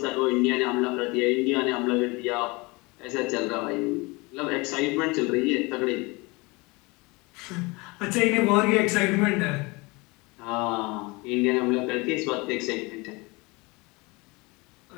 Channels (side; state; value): right; quieter; 25.5 dB